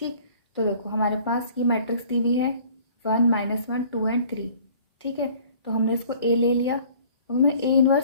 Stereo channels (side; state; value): both; inverted; correlation -0.52